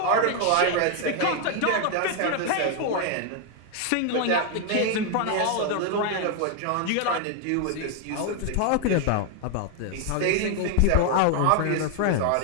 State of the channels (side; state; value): both; different; correlation 0.00